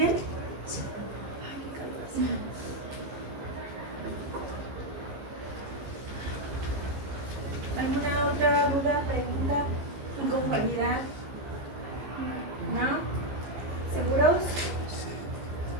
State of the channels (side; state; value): left; late; 15 ms